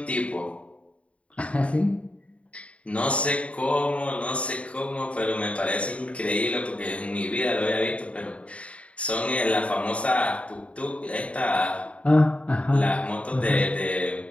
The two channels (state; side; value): late; right; 0.063 ms